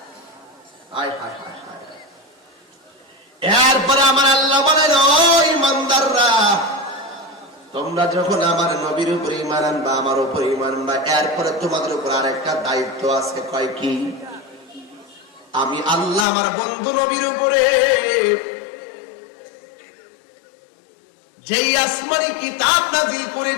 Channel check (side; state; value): right; drops out; at 16.2 s